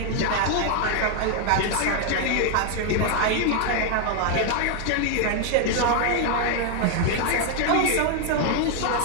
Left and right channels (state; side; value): different; both; correlation 0.00